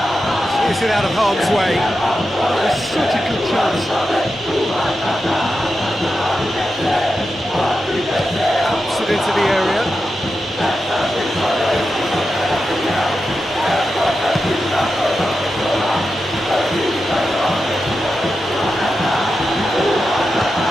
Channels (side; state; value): both; normal; correlation 0.89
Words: Is it out of harm's way? It's such a good chance. Puts it into the area.